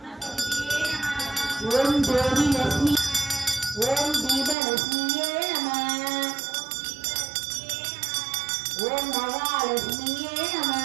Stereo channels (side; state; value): left; drops out; at 4.5 s